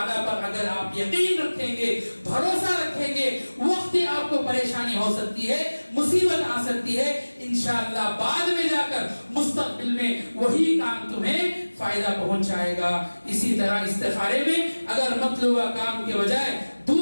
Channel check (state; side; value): inverted; both; correlation -1.00